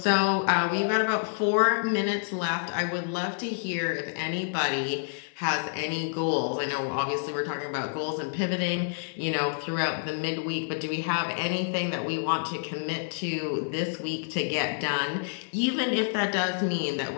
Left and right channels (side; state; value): right; silent; digital silence